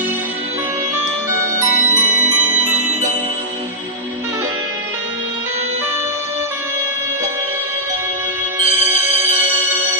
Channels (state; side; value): normal; both; correlation -0.11